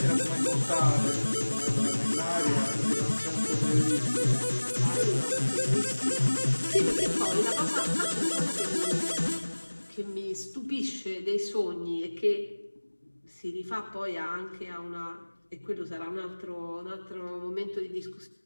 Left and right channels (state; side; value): inverted; both; correlation -1.00